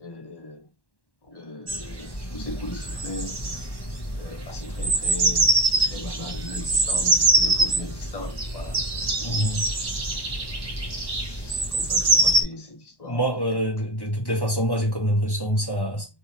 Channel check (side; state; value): right; late; 1.1 ms